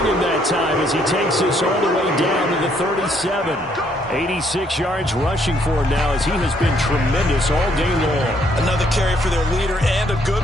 him that time as he takes this all the way down to the 37. 86 yards rushing for him now as he has been tremendous all day long. Another carry for their leader and a good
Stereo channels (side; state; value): both; normal; correlation 0.69